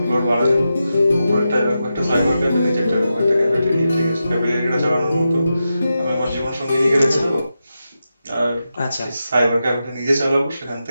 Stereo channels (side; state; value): both; inverted; correlation -0.89